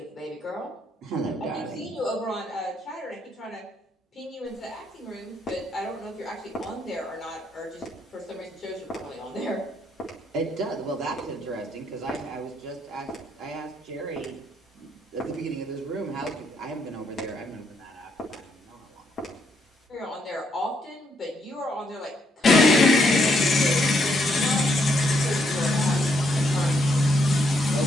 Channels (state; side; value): normal; both; correlation 0.75